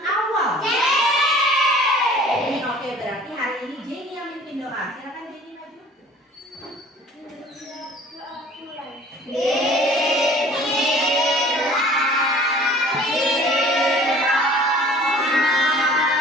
Oke, berarti hari ini Jenny yang mimpin doa. Silakan Jenny maju.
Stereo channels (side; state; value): both; normal; correlation 0.49